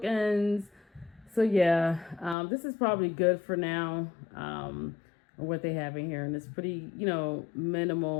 So yeah, this is probably good for now. What they have in here, and it's pretty,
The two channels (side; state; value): right; drops out; at 2.4 s